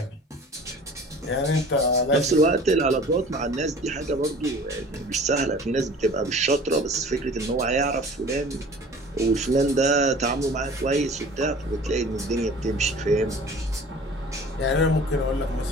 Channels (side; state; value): both; normal; correlation 0.45